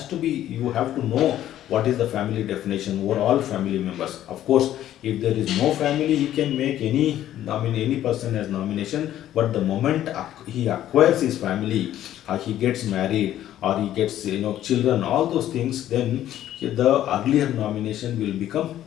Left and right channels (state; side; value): quieter; right; 12.3 dB